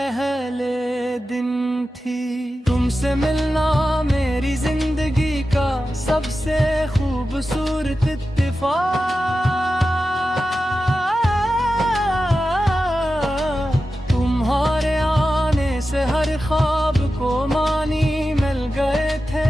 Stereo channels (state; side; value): normal; both; correlation 0.92